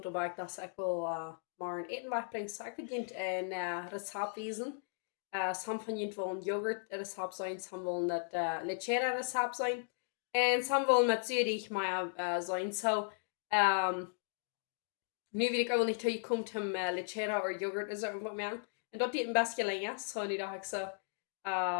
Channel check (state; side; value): silent; right; digital silence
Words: bij dat ik wil maar een eten wegbrengen. So ik wil een recept wijzen. Some van jullie willen yoghurt recept zijn, some willen het lechera recept zijn. En some willen met zuurig maar zijn. So, nu weet ik ook niet hoe je komt om lechera of yoghurt is er wat meer. En dat deed een best gelingen. So nu dacht ik zo,